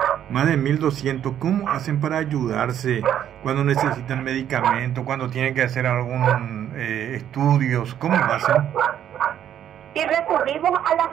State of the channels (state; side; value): quieter; left; 10.2 dB